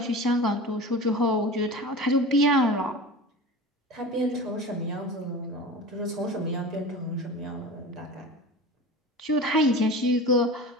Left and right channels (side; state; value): both; normal; correlation 0.33